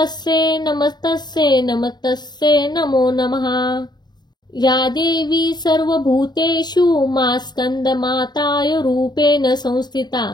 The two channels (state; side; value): late; right; 0.20 ms